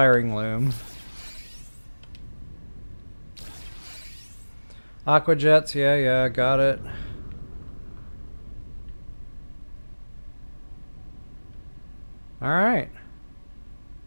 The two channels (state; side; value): inverted; both; correlation -1.00